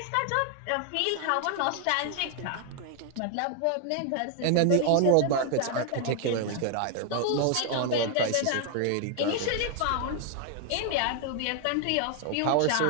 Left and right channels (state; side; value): different; both; correlation 0.00